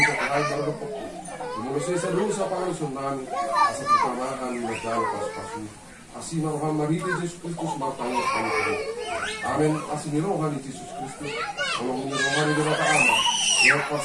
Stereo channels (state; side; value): identical; both; correlation 1.00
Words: sa kahit darapok ko. Mula sa doon sa pangalusun namin, asa pagkamahan ng nagdalo pas-pasu. Asi maruhan mariti Jesus Kristus martanya Panginoon. Amen. Asi nirohan ni Jesus Kristus. Walang nirohan ni Dara Ama. Yang